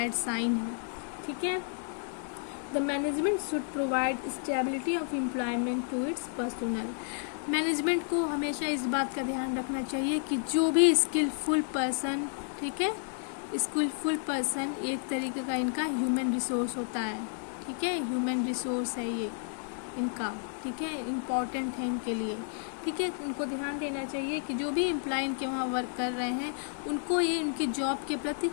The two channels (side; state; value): right; silent; 57 dB below the other